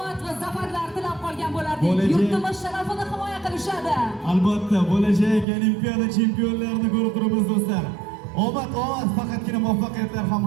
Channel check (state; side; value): drops out; left; at 5.5 s